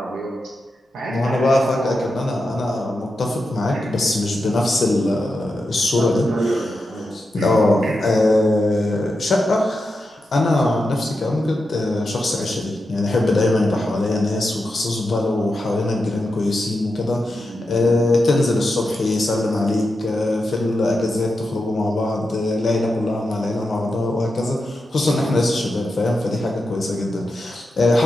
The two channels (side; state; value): both; normal; correlation 0.88